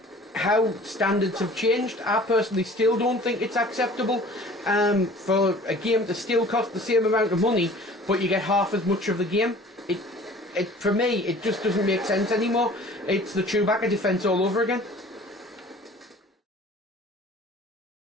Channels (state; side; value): normal; both; correlation 0.47